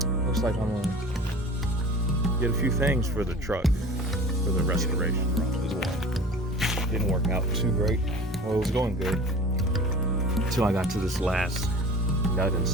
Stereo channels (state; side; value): normal; both; correlation 0.40